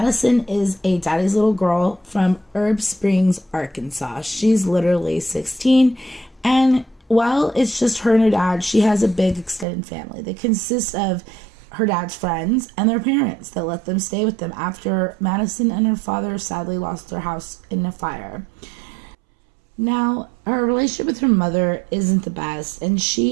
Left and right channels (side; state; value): left; drops out; at 9.7 s